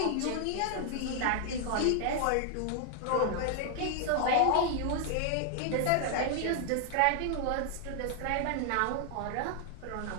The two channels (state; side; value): different; both; correlation 0.00